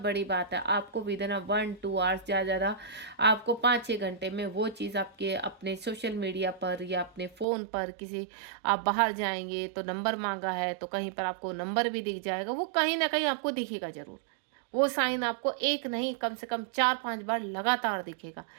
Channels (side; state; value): left; drops out; at 7.5 s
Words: बात है। आपको विदिन 1-2 आवर्स ज़्यादा आपको 5-6 घंटे में वो चीज़ आपके अपने सोशल मीडिया पर या अपने फ़ोन पर किसी, आप बाहर जाएंगे तो नंबर मांगा है तो कहीं पर आपको नंबर भी दिख जाएगा, वो कहीं ना कहीं आपको दिखेगा ज़रूर। वो साइन आपको एक नहीं कम से कम 4-5 बार लगातार दिखेगा